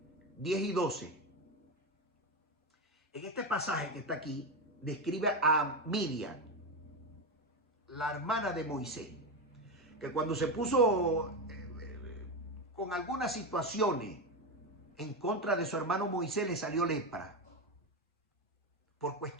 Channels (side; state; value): both; normal; correlation 0.14